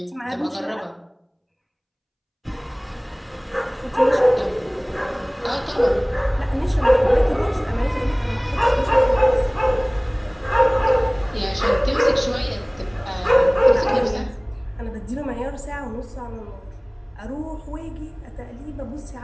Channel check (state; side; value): identical; both; correlation 1.00